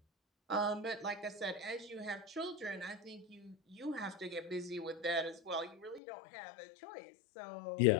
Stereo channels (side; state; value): right; drops out; at 6.0 s